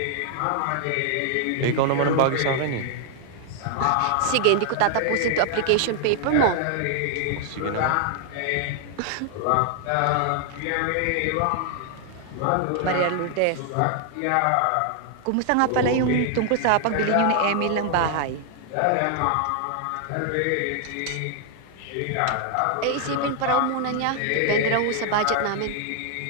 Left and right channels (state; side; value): different; both; correlation 0.00